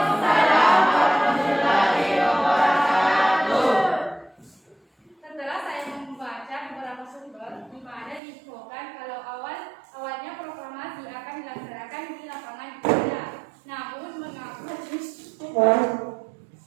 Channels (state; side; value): drops out; left; at 8.2 s